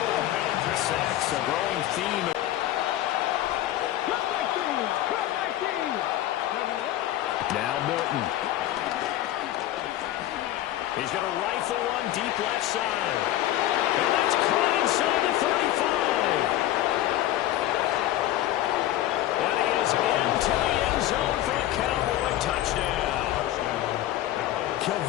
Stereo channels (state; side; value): quieter; right; 13.8 dB